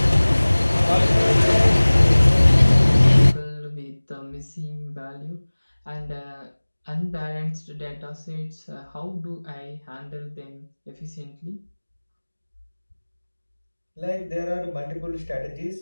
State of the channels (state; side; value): inverted; both; correlation -1.00